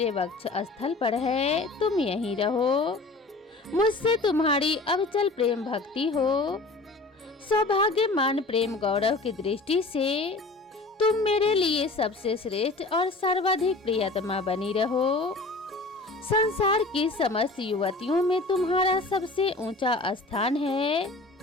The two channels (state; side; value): quieter; right; 3.2 dB